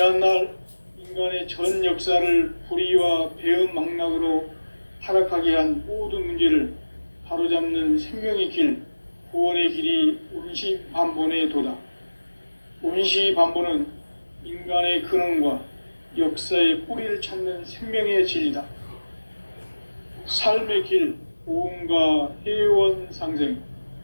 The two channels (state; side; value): inverted; both; correlation -1.00